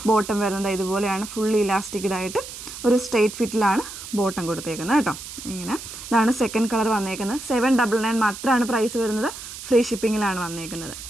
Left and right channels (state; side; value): noise; right; hiss, 11 dB below the sound